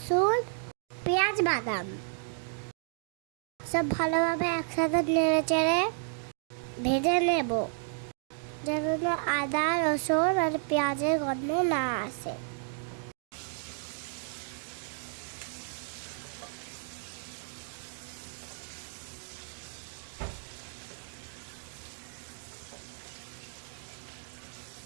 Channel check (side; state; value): left; silent; digital silence